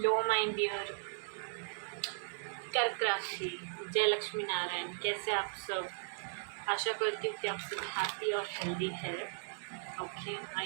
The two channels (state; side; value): silent; left; digital silence